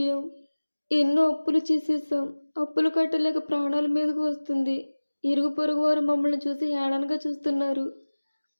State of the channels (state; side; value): inverted; both; correlation -1.00